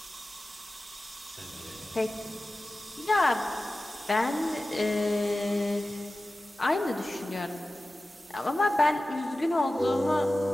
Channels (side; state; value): both; normal; correlation 0.96